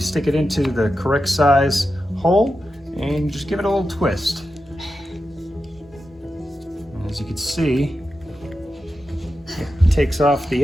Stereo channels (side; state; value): both; normal; correlation 0.90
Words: stick it into the correct size hole and you just give it a little twist. And as you can see, it takes off